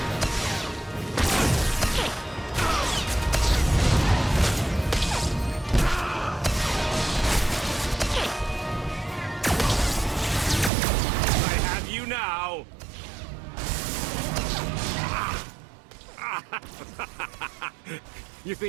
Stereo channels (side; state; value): left; drops out; at 10.7 s